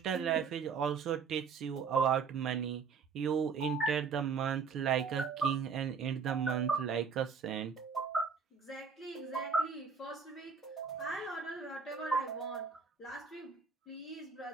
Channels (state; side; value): quieter; left; 5.7 dB